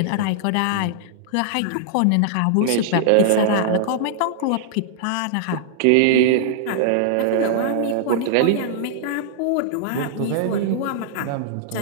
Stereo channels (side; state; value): both; different; correlation -0.01